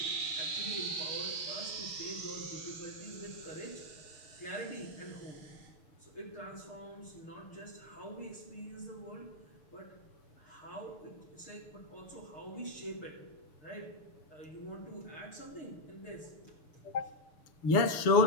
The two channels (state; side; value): late; right; 6.6 ms